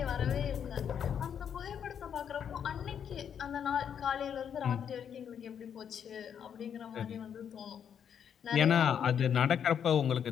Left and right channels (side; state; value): right; quieter; 8.2 dB